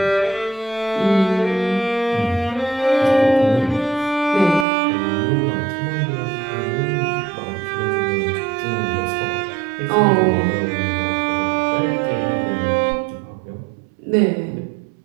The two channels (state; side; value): drops out; left; at 4.7 s